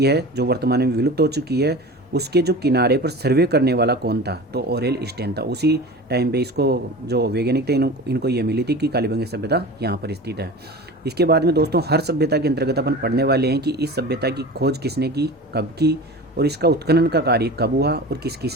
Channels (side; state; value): both; normal; correlation 0.34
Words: है जो वर्तमान में विलुप्त हो चुकी है, उसके जो किनारे पर सर्वे करने वाला कौन था, तो ओरेल स्टेन था। उसी टाइम पे इसको जो वैज्ञानिक थे इनको ये मिली थी कि कालीबंगा सभ्यता यहाँ पर स्थित है। इसके बाद में दोस्तों, हर सभ्यता के अंतर्गत अपन पढ़ने वाले हैं कि इस सभ्यता की खोज किसने की, कब की, और इसका उत्खनन का कार्य कब हुआ और किस